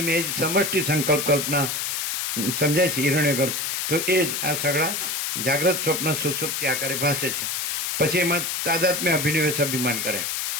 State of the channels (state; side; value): noise; left; hiss, 1 dB below the sound